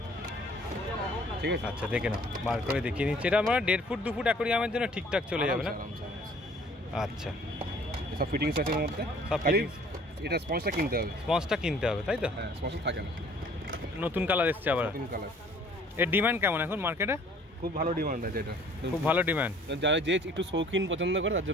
ঠিক আছে। আচ্ছা, দেখে নাও, বার করে দেখিয়ে নিচ্ছি। এটা আমরা 1.5 ফুট 2 ফুট অ্যাকোরিয়ামের জন্য ঠিকঠাক চলে যাবে না? আচ্ছা, সব ফিটিংস আছে এর মধ্যে। সব খালি এটা স্পঞ্জটা কিনতে হবে। স্পঞ্জটা কিনতে হবে তাই তো? হ্যাঁ, স্পঞ্জ থাকে না। নতুন কালার এসছে আবার। নতুন কালার। এর ডিমান্ড কেমন এখন মার্কেটে? খুব ভালো ডিমান্ড আছে এটা। খুব ভালো ডিমান্ড। যারা যে একটু শৌখিন পছন্দ করে তার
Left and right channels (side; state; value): both; normal; correlation 0.55